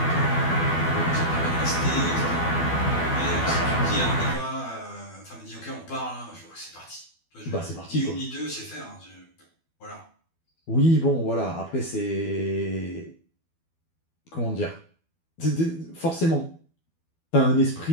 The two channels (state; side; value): late; right; 12 ms